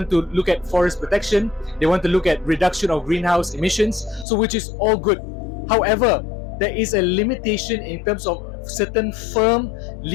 to look at forest protection. They want to look at reduction of greenhouse emissions, so which is all good. However, there is a limitation in terms of certain firm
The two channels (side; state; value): right; drops out; at 4.2 s